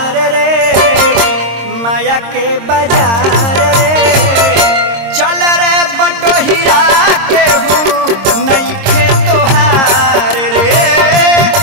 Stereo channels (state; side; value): late; left; 26 ms